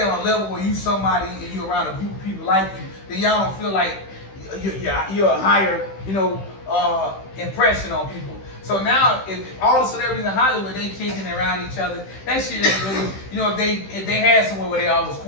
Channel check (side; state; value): right; late; 15 ms